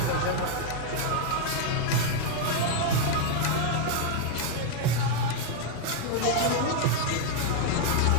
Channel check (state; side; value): different; both; correlation 0.00